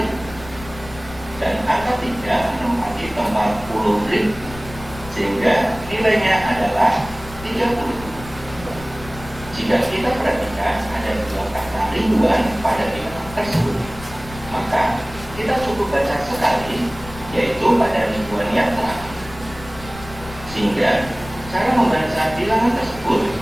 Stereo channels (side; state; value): left; noise; rumble, 16 dB below the sound